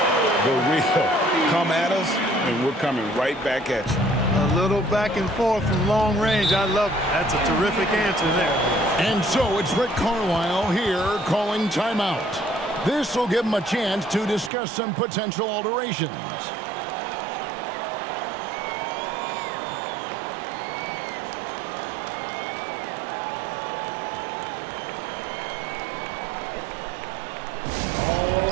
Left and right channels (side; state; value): left; drops out; at 14.5 s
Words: The real come at us, and we're coming right back at you. A little back and forth from long range. I love it. That's a terrific answer there. And so it's Rick Carlisle here calling timeout. This will give him a chance to discuss some potential alterations.